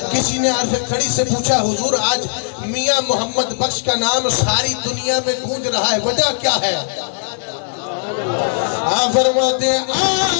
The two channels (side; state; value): right; silent; digital silence